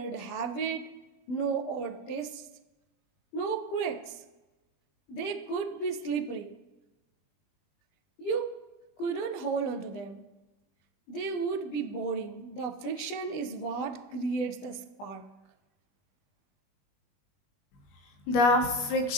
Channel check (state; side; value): late; right; 20 ms